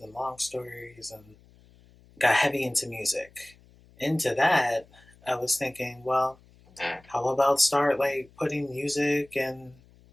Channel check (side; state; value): left; noise; hum, 27 dB below the sound